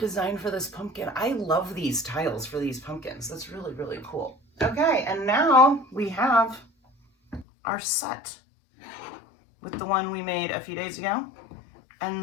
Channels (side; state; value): right; drops out; at 7.5 s